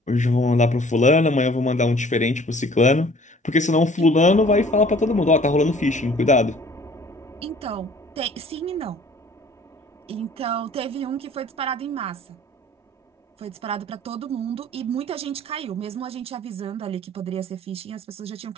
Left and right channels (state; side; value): normal; both; correlation 0.53